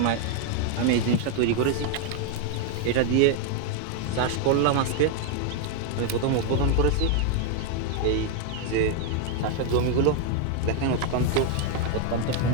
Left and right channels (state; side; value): different; both; correlation 0.01